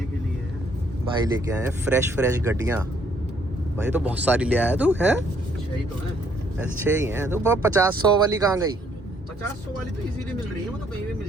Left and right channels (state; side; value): normal; both; correlation 0.67